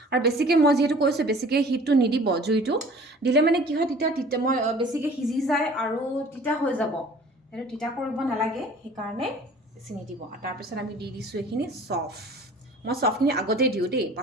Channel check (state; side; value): normal; both; correlation 0.48